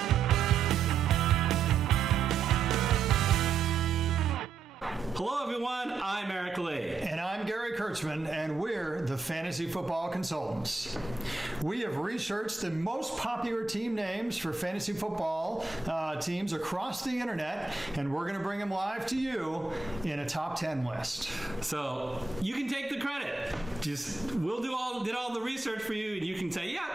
Hello everyone, I'm Eric Lee. And I'm Gary Kurtzman, and we're the Fantasy Football Consultants. We have researched the most popular team names for fantasy football teams across the internet, and we're going to bring them live to you in a top 10 list. So you can take the credit. We'll did all the research for you, and you can say, yeah,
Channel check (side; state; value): left; quieter; 4.5 dB